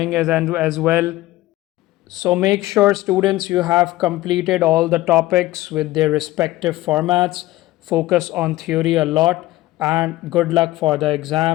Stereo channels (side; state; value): right; quieter; 17.4 dB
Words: as well. So make sure, students, you have completed all the topics with their respective formats. Focus on theory a lot, and good luck for the